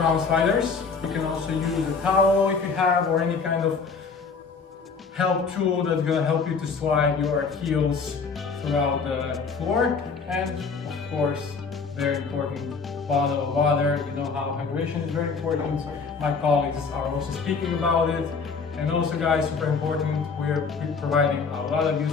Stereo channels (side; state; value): right; quieter; 5.0 dB